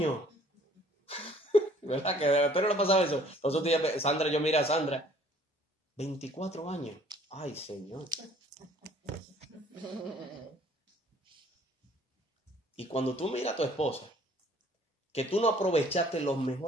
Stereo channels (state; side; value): normal; both; correlation 0.57